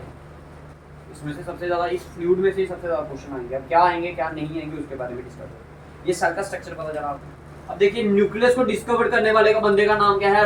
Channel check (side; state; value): both; identical; correlation 1.00